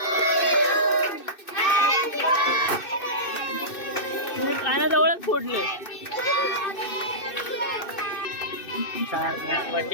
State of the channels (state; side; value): late; right; 2.6 ms